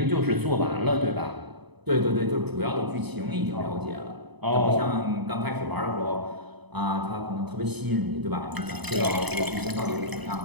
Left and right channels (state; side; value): late; left; 0.99 ms